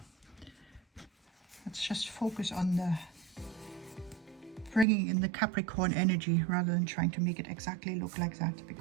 let's just focus on the bringing in the Capricorn energy rather than trying to make it exactly look like that,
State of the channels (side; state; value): left; drops out; at 4.9 s